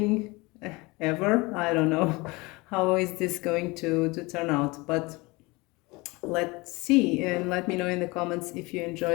ever. I don't know how is this going to turn out, but let's see, and let me know in the comments if you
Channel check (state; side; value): quieter; right; 24.3 dB